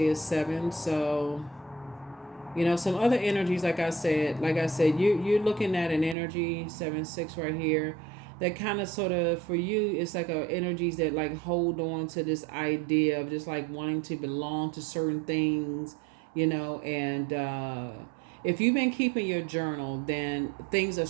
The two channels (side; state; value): left; drops out; at 6.2 s